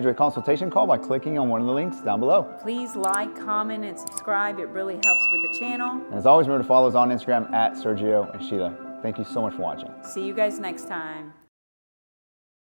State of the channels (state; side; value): inverted; both; correlation -1.00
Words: a consultation call by clicking on one of the links down below. Please like, comment, and subscribe. It really helps with the channel. And as always, remember to follow us on Instagram at Sergio and Sheila. Thank you so much for watching. See you guys next time.